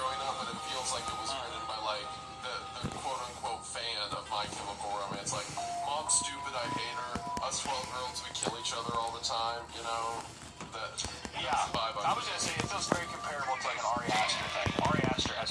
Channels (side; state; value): both; identical; correlation 1.00